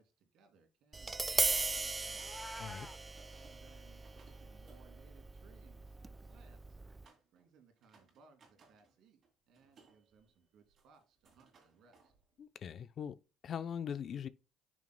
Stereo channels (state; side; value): normal; both; correlation 0.91